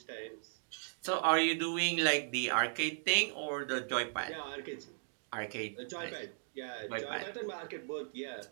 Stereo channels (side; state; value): left; silent; digital silence